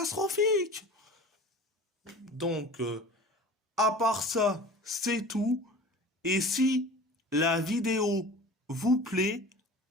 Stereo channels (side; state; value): both; normal; correlation 0.39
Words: Donc, à part ça, c'est tout. Et si la vidéo vous plaît,